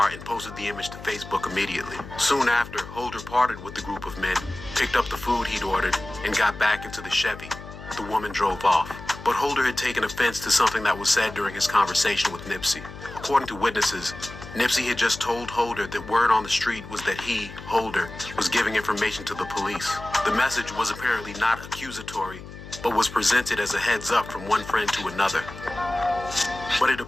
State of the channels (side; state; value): left; noise; hum, 14 dB below the sound